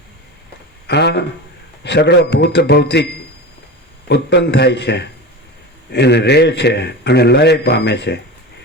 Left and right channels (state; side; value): normal; both; correlation 0.28